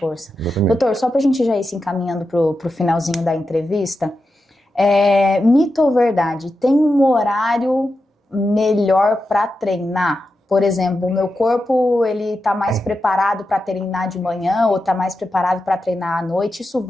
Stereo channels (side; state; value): both; normal; correlation 0.89